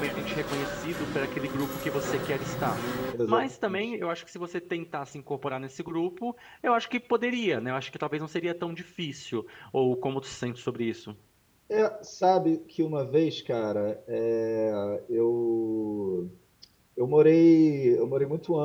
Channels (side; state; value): both; identical; correlation 1.00